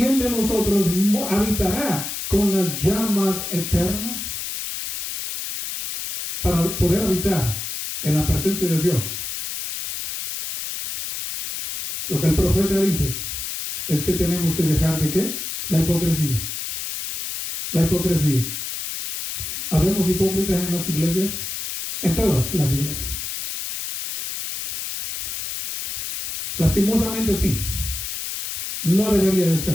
de nosotros habitará con las llamas eternas? Para poder habitar en la presencia de Dios, lo que el profeta dice es que tenemos que dejar de ¿qué? La hipocresía. La hipocresía. ¿Habemos hipócritas en las iglesias? En todas las iglesias. Lastimosamente sí. No debería de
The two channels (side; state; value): left; noise; hiss, 5 dB below the sound